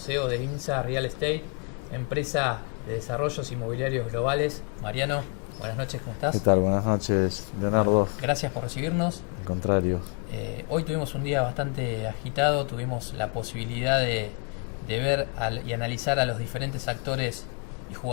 de INSA Real Estate, empresa de desarrollos inmobiliarios globales. Mariano, buenas noches, ¿cómo ¿Qué estás? tal? Buenas noches, Leonardo. Bueno, gracias por recibirnos. Al contrario. Hoy tuvimos un día bastante agitado, tuvimos la posibilidad de ver y analizar a los diferentes actores y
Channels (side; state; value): right; quieter; 34.0 dB